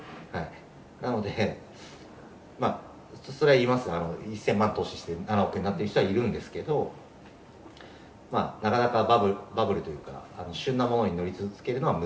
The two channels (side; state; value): both; identical; correlation 1.00